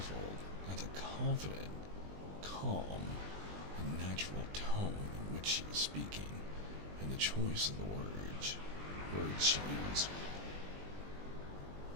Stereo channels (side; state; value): left; late; 20 ms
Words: at the confident, calm, and natural tone in which she was speaking, and the choice of the words she used.